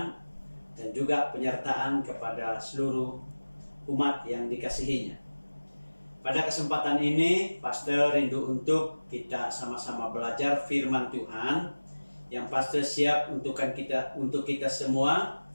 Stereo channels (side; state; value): both; inverted; correlation -1.00